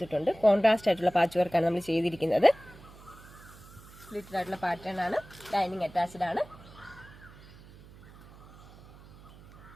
കോൺട്രാസ്റ്റ് ആയിട്ടുള്ള പാച്ച് വർക്കാണ് നമ്മൾ ചെയ്തിരിക്കുന്നത്. സ്ലിറ്റഡ് ആയിട്ടുള്ള പാറ്റേൺ ആണ്. ലൈനിങ് അറ്റാച്ച്ഡ് ആണ്.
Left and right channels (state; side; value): noise; right; hum, 21 dB below the sound